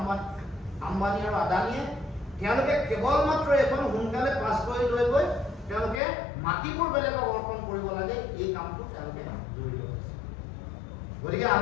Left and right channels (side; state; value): right; drops out; at 6.0 s